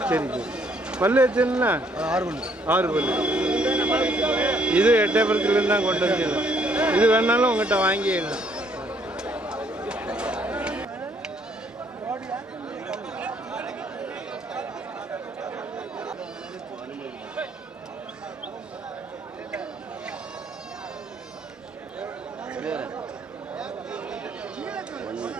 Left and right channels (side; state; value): both; normal; correlation 0.66